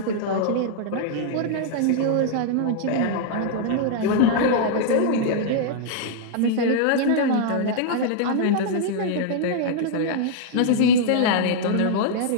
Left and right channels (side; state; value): both; different; correlation -0.01